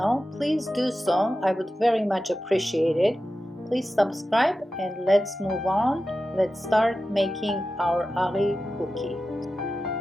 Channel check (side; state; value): both; normal; correlation 0.93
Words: please do so. I would very much appreciate it. Please subscribe and let's move on. Let's start making our SAVORY cookie.